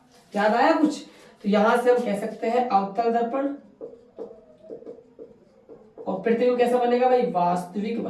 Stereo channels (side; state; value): both; identical; correlation 1.00